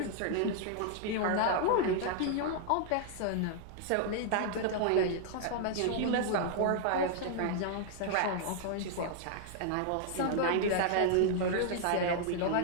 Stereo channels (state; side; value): different; both; correlation -0.01